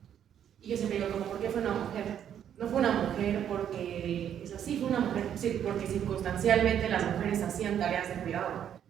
Y yo siempre digo como, ¿por qué fue una mujer? No fue una mujer porque es así, fue una mujer porque circunstancialmente las mujeres hacían tareas de cuidado,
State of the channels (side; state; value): left; quieter; 9.5 dB